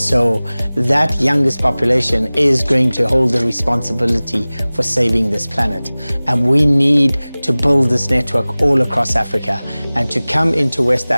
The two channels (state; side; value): inverted; both; correlation -0.99